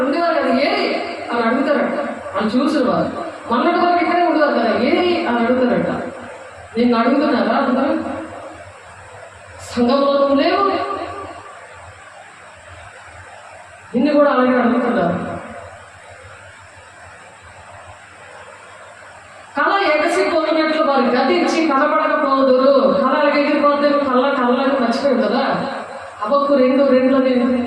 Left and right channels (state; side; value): identical; both; correlation 1.00